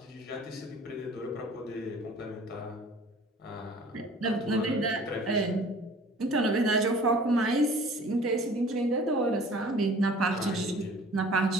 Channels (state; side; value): normal; both; correlation 0.48